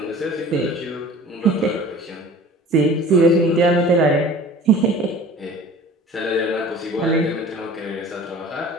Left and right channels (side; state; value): both; normal; correlation 0.44